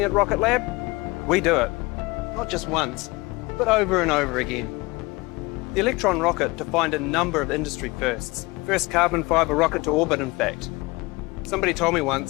at Rocket Lab, we do it. Not just once, but over and over again. The Electron rocket defined a number of industry firsts. First carbon fibre rocket to orbit, in fact. Somebody told me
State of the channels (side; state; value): right; quieter; 23.6 dB